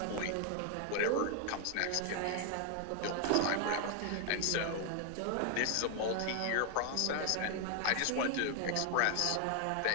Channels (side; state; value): both; different; correlation 0.00